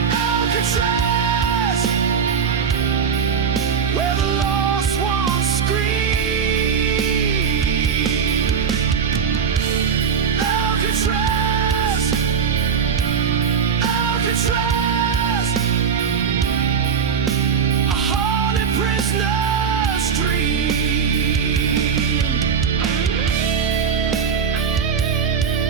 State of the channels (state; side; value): quieter; left; 6.7 dB